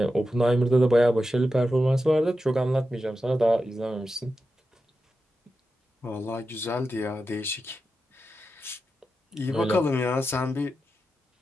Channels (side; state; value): both; normal; correlation 0.90